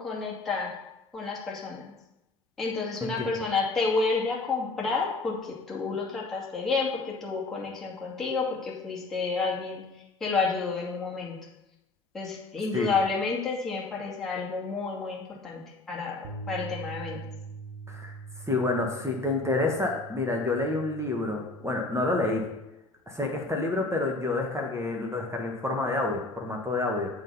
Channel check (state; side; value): quieter; right; 3.2 dB